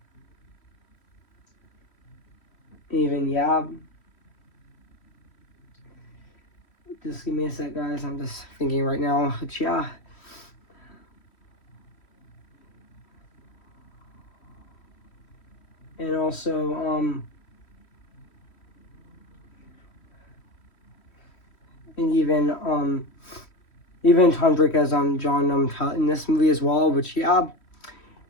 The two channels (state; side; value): late; right; 3.1 ms